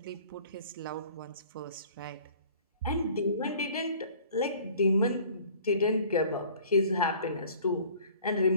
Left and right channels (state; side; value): inverted; both; correlation -0.51